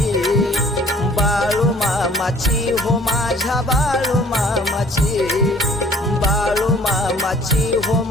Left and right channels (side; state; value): both; normal; correlation 0.54